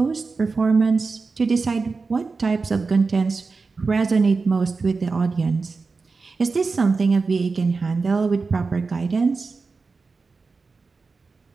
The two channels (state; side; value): quieter; left; 4.3 dB